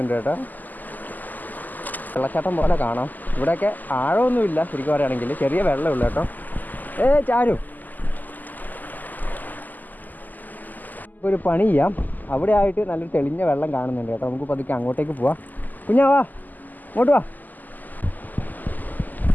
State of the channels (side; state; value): right; late; 0.084 ms